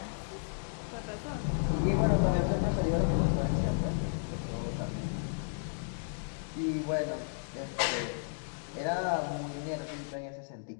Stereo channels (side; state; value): right; silent; digital silence